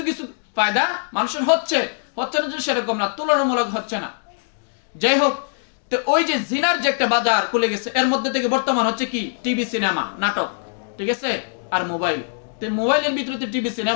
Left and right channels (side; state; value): right; silent; digital silence